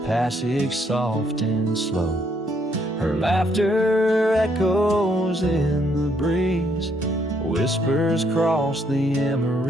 passage soft and slow. Her laughter echoes in the breeze, whispers cross the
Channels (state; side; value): normal; both; correlation 0.71